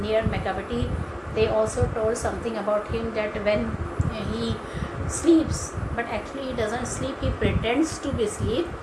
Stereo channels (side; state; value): both; identical; correlation 1.00